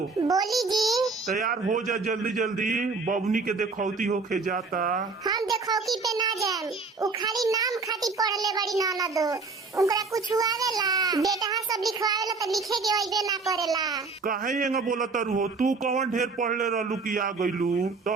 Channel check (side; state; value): left; quieter; 4.2 dB